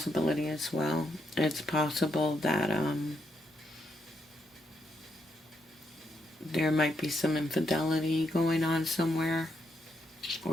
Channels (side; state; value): both; normal; correlation 0.78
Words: as well. It's possible that there might be some infidelity going on somewhere,